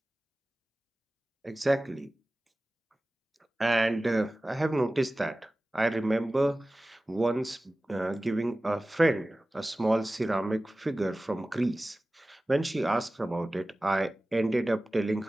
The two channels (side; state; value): both; normal; correlation 0.97